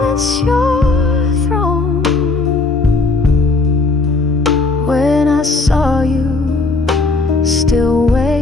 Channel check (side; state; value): right; quieter; 3.5 dB